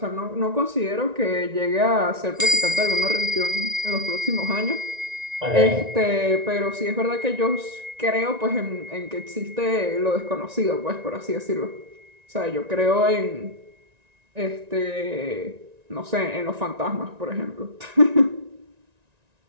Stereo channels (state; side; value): late; left; 1.9 ms